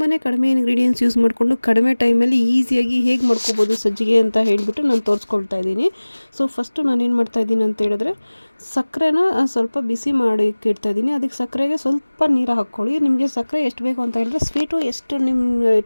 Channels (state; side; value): inverted; both; correlation -1.00